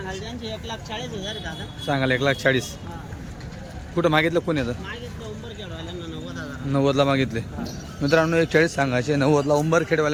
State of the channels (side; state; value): both; identical; correlation 1.00